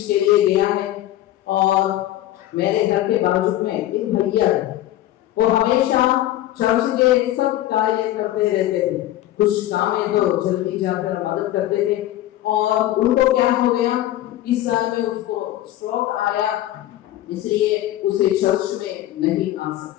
के लिए गया है और मेरे घर के बाजू में एक भैया है, वो हमेशा चर्च के सब कार्य करते रहते थे। कुछ काम है तो जल्दी जाकर मदद करते थे और उनको क्या हो गया, इस साल में उसको स्ट्रोक आया, इसलिए उसे चर्च में नहीं आ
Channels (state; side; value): quieter; right; 14.1 dB